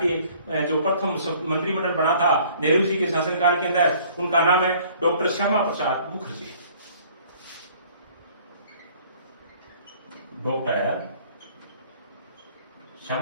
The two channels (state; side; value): inverted; both; correlation -0.55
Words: जो प्रथम मंत्रिमंडल बना था नेहरू जी के शासनकाल के अंदर, उनका नाम है doctor Shyama Prasad Mukherjee. Doctor